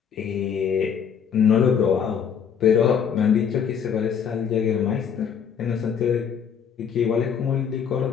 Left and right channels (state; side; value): quieter; right; 7.4 dB